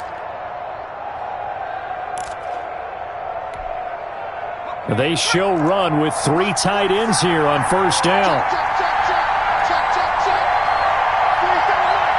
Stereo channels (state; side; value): identical; both; correlation 1.00